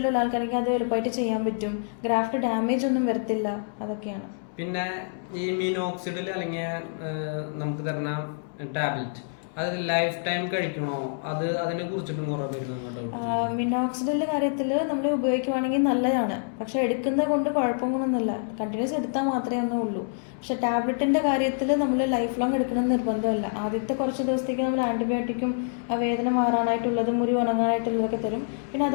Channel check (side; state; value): right; silent; digital silence